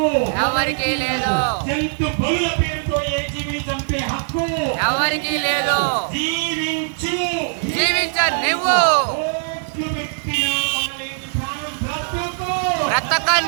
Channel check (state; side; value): silent; left; digital silence